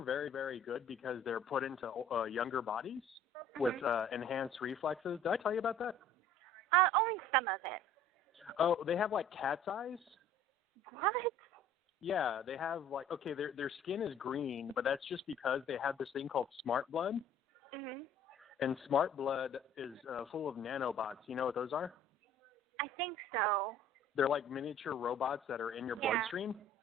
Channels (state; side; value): normal; both; correlation 0.51